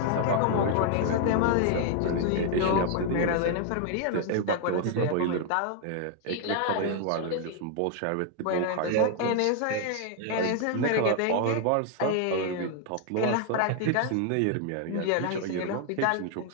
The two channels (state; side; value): different; both; correlation 0.00